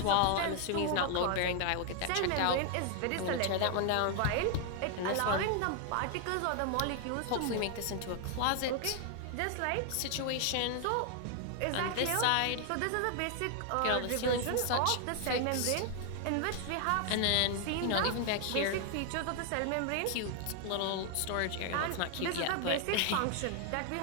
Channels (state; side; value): different; both; correlation 0.00